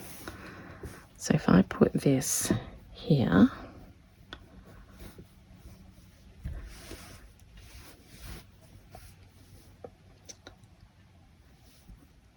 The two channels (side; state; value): both; identical; correlation 1.00